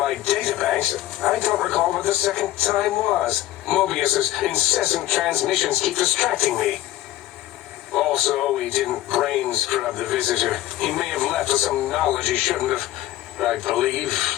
databanks, I don't recall what the second time was. Mobius's incessant transmissions keep distracting me. Also, we didn't brain scrub the visitor. He may have left us some knowledge he shouldn't have. I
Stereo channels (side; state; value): right; quieter; 14.6 dB